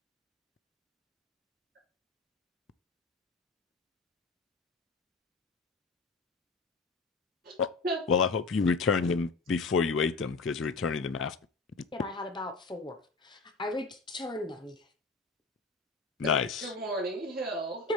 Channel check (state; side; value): quieter; right; 4.0 dB